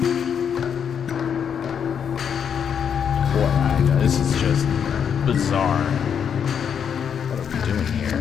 This is just bizarre. What are we doing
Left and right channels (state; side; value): quieter; right; 7.7 dB